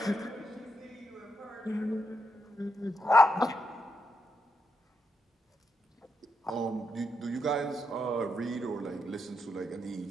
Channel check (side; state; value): both; normal; correlation 0.82